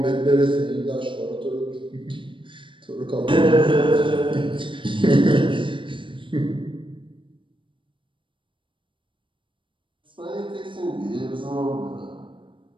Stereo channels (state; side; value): late; left; 0.24 ms